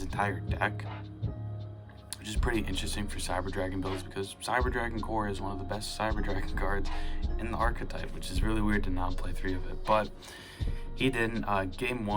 entire deck, which is pretty interesting for Cyber Dragon builds, because Cyber Dragon Core is one of the best Cyber Dragon cards in the archetype, which is really weird to not play 3 of it. But he didn't. Game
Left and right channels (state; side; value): identical; both; correlation 1.00